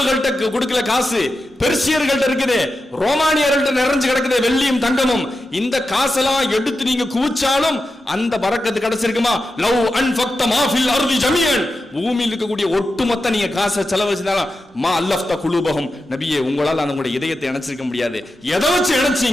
கொடுக்கல காசு, பெர்சியர்கள்ட்ட இருக்குது, ரோமானியர்கள்ட்ட நிறைஞ்சு கிடக்குது வெள்ளியும் தங்கமும். இந்த காசெல்லாம் எடுத்து நீங்க குவிச்சாலும் அந்த பரக்கத்து கிடைச்சிருக்குமா? லவ் அன்ஃபக்த மா ஃபில் அர்தி ஜமீஅன், பூமியில் இருக்கக்கூடிய ஒட்டுமொத்த நீங்க காசை செலவழிச்சாலும் மா அல்லஃப்த குலூபஹும், நபியே உங்களால் அந்த உங்களுடைய இதயத்தை இணைச்சிருக்க முடியாது. எதை வச்சு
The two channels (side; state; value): both; normal; correlation 0.90